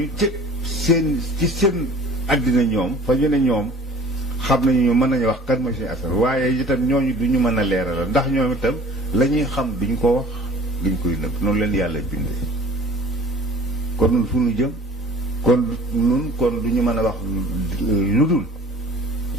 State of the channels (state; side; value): normal; both; correlation 0.47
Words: ci seen àddina ñoom fa ñu ne ñoom xam nañu mën nañu wax kan mooy Sëñ Assane waaye itam ñooñu du ñu mën a leeral ndax ñoom itam la ñuy xam duñ ko wax duñ koy nëbb noonu leen yàlla bindee kon nun fu nu jëm kon du ñu mën a wax lu dul